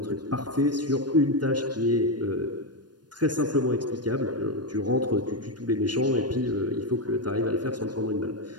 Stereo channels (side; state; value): left; late; 0.70 ms